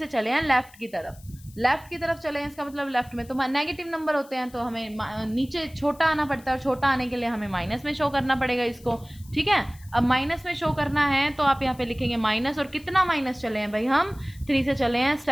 चले हैं लेफ्ट की तरफ, लेफ्ट की तरफ चले हैं, इसका मतलब लेफ्ट में तो नेगेटिव नंबर होते हैं, तो हमें नीचे छोटा आना पड़ता है, और छोटा आने के लिए हमें माइनस में शो करना पड़ेगा इसको, ठीक है। अब माइनस में शो करना है तो आप यहाँ पे लिखेंगे माइनस, और कितना माइनस चले हैं भाई, हम 3 से चले हैं,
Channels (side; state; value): left; noise; hiss, 24 dB below the sound